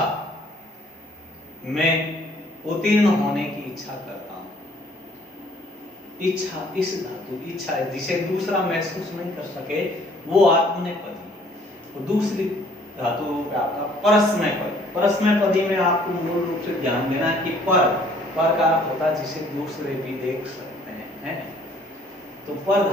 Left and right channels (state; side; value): normal; both; correlation 0.59